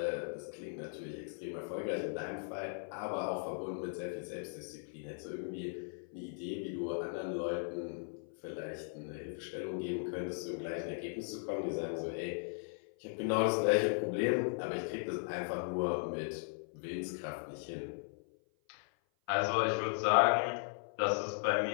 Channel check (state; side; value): silent; right; 53 dB below the other